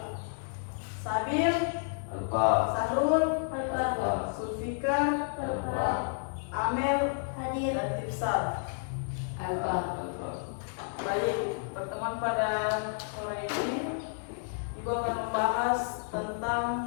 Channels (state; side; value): silent; right; 57 dB below the other